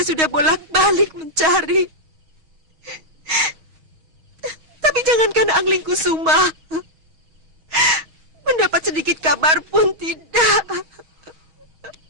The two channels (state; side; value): late; left; 6.4 ms